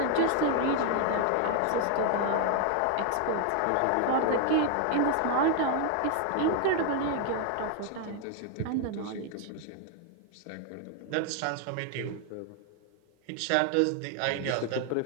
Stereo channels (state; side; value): different; both; correlation 0.00